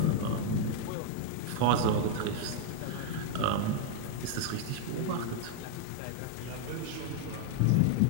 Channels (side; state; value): both; different; correlation -0.01